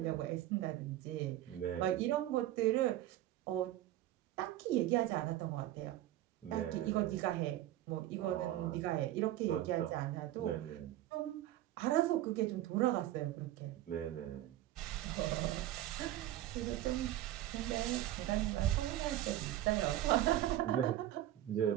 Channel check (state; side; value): quieter; left; 13.8 dB